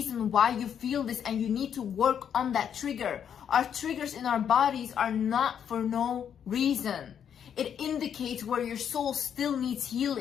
why you feel this and you need to work on that trigger. Our triggers in our bodies are not for no reason. It indicates where your soul still needs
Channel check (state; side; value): quieter; right; 8.4 dB